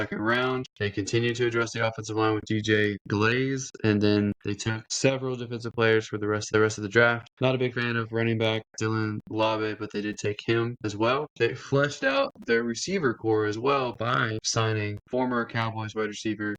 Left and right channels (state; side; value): identical; both; correlation 1.00